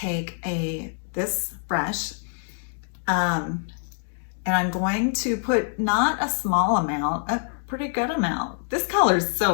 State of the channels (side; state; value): right; silent; 62 dB below the other